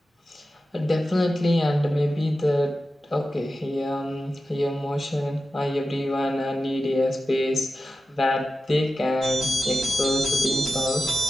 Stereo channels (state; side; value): normal; both; correlation 0.93